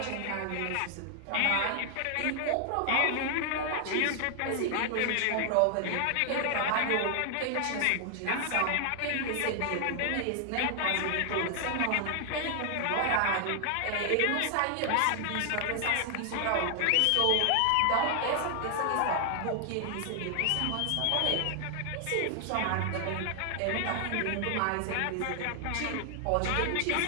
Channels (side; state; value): both; different; correlation 0.00